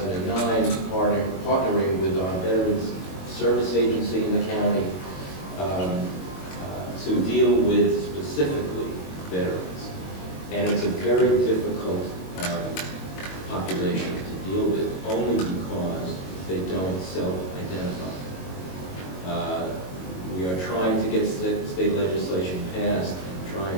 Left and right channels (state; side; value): late; right; 22 ms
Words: partnering with our Veterans Service Agency in the county to deal with specifically veterans. And it's a very difficult population to deal with, only because they don't self-identify. We are trying to get state legislation passed, and